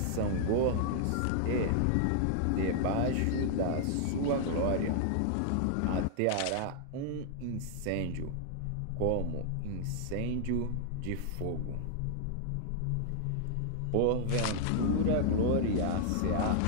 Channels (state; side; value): different; both; correlation 0.00